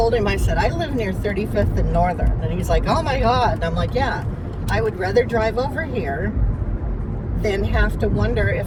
him, I said, I live near 35th and Northern. And he's like, oh my God. And I'm like, yeah, I would rather drive over here than have to wonder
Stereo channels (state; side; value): identical; both; correlation 1.00